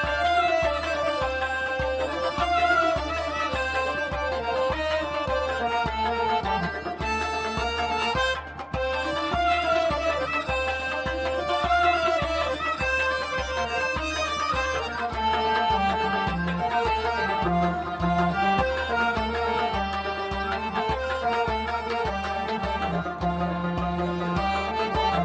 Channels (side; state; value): both; identical; correlation 1.00